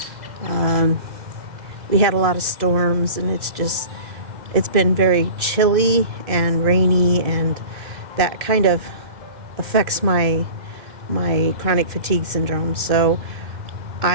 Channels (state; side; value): late; left; 1.9 ms